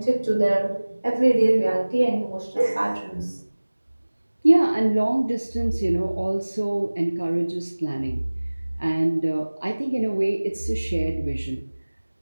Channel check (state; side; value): inverted; both; correlation -1.00